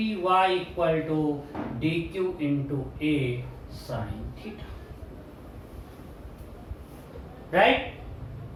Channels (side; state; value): both; identical; correlation 1.00